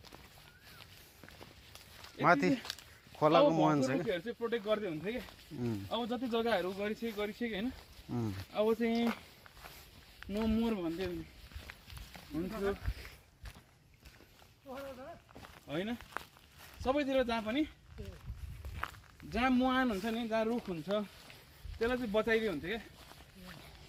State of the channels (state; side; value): identical; both; correlation 1.00